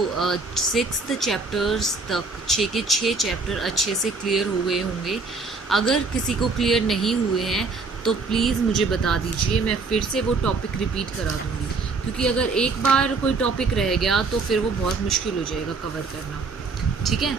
6th चैप्टर्स तक 6 के 6 चैप्टर अच्छे से क्लियर हो गए होंगे। अगर किसी को क्लियर नहीं हुए हैं तो प्लीज़ मुझे बता दीजिए, मैं फिर से वो टॉपिक रिपीट करा दूँगी, क्योंकि अगर एक बार कोई टॉपिक रह गया तो फिर वो बहुत मुश्किल हो जाएगा कवर करना। ठीक है,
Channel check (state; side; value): quieter; left; 4.0 dB